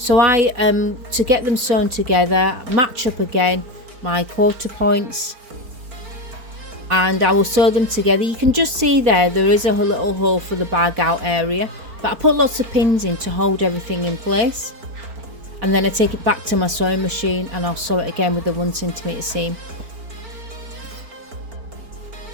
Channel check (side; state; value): left; late; 4.4 ms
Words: to get them sewn together, match up again my quarter points, and I will sew them together. You can just see there is a little hole for the bag out area, but I put lots of pins in to hold everything in place. And then I take it back to my sewing machine and I'll sew it again with a 1 centimeter seam.